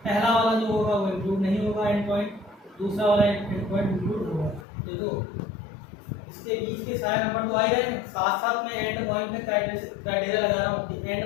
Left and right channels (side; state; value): right; drops out; at 4.7 s